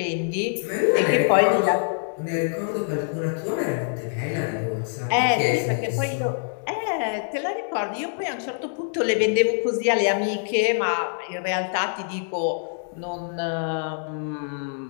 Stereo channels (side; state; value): right; silent; digital silence